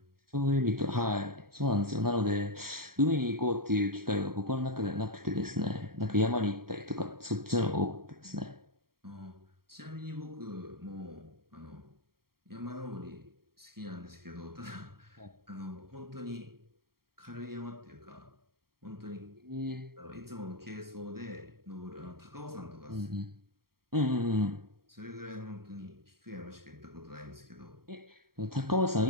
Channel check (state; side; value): late; left; 0.93 ms